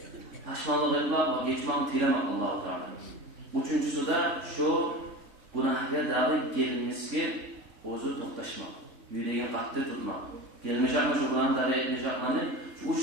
Pashmanlik etmek ve geçmekni tilamak Allah-u Teala. Üçüncüsü de şu günahga davi gelinmesiga o'zi to'xtashmak. Yüreğini qattiq tutmak. Gelmeyecekmi şu günahni davi etmeyecekmi? Şu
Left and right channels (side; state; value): left; late; 3.6 ms